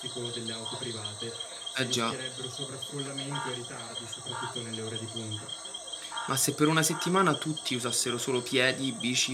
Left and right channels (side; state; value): both; identical; correlation 1.00